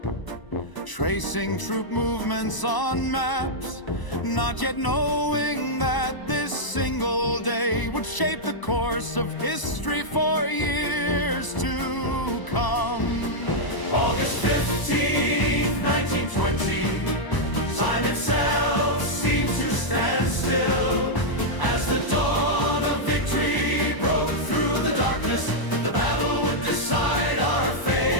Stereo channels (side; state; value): right; late; 1.0 ms